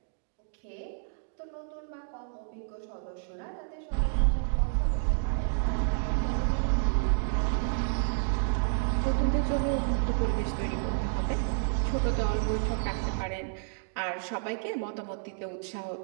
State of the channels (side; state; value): left; silent; 58 dB below the other